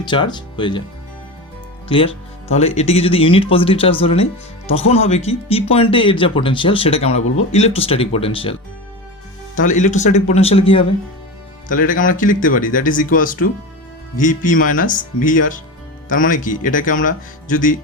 চার্জ হয়ে যায়। ক্লিয়ার? তাহলে এটিকে যদি ইউনিট পজিটিভ চার্জ ধরে নেই তখন হবে কি, পি পয়েন্টে এর যা পোটেনশিয়াল সেটাকে আমরা বলবো ইলেকট্রোস্ট্যাটিক পোটেনশিয়াল। তাহলে ইলেকট্রোস্ট্যাটিক পোটেনশিয়াল কী হবে, তাহলে এটাকে আমরা কি লিখতে পারি, that is equals to VP minus VR. তার মানে কি, এটাকে আমরা যদি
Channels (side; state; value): both; normal; correlation 0.25